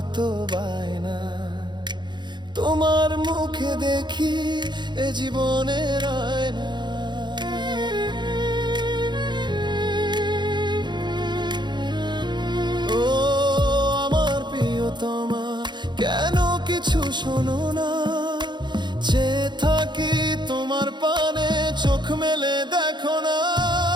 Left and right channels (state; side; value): late; left; 0.22 ms